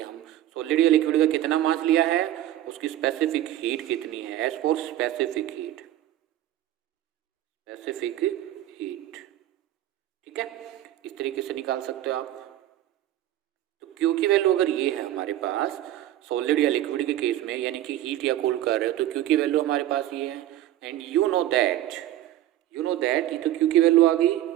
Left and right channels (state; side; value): quieter; left; 13.4 dB